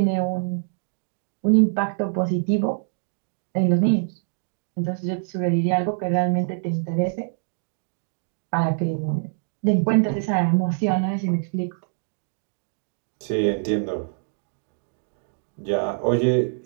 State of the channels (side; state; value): left; silent; digital silence